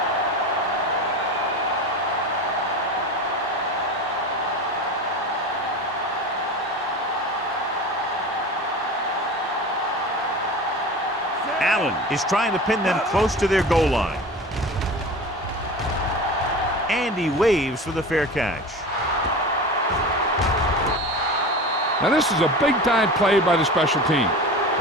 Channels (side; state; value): both; normal; correlation 0.32